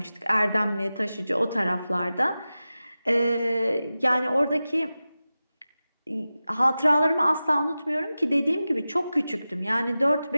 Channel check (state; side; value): inverted; both; correlation -0.95